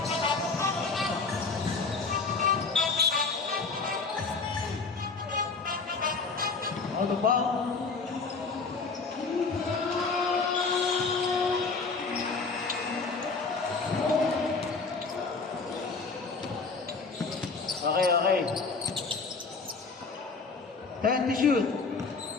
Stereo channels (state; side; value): quieter; right; 4.4 dB